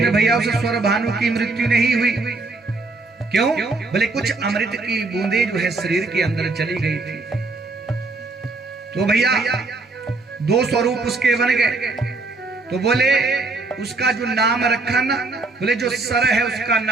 भैया उस स्वर भानु की मृत्यु नहीं हुई। क्यों? बोले कुछ अमृत की बूंदे जो है शरीर के अंदर चली गई थी। तो भैया दो स्वरूप उसके बन गए। तो बोले उसका जो नाम रखा ना, बोले जो सर है उसका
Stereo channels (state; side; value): quieter; left; 3.5 dB